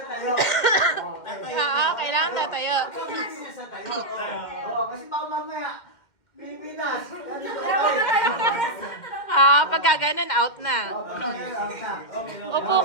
Kailangan tatayo. Pilipinas tatayo. Kasi baka mamaya, Pilipinas. Pagka ganun, out na. Upo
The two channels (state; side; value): late; right; 2.1 ms